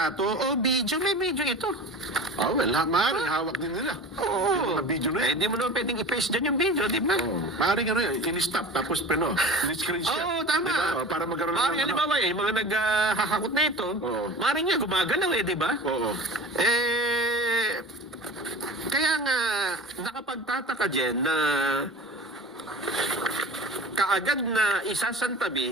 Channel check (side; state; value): both; normal; correlation 0.36